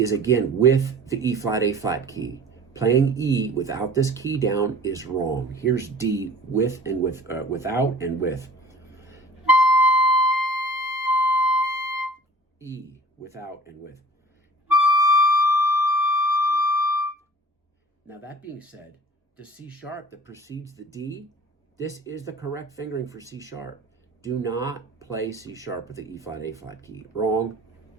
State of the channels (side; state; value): both; normal; correlation 0.46